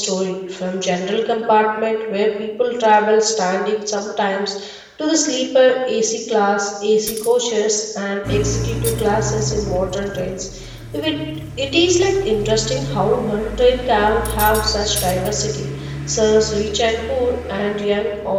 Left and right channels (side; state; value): both; identical; correlation 1.00